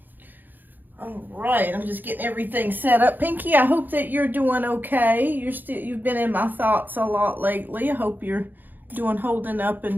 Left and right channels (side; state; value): left; late; 0.088 ms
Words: All right, I'm just getting everything set up. Pinky, I hope that you're doing okay. You've been in my thoughts a lot lately. I hope you're holding up